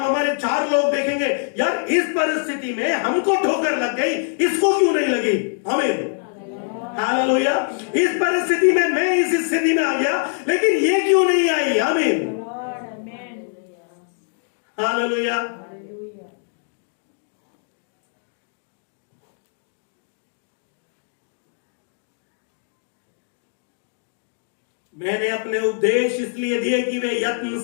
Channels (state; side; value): silent; right; digital silence